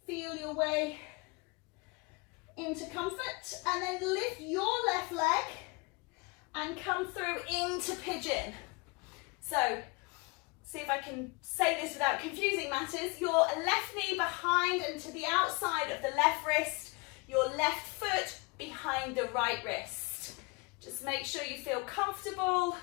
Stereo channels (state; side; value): quieter; right; 28.1 dB